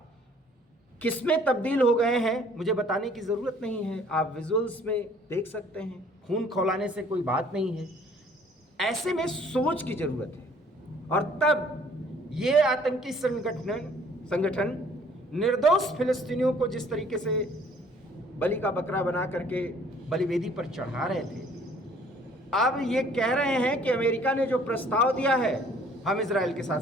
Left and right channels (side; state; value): both; normal; correlation 0.57